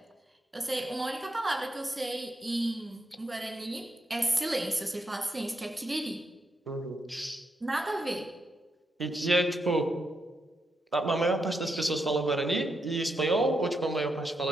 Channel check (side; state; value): both; normal; correlation 0.82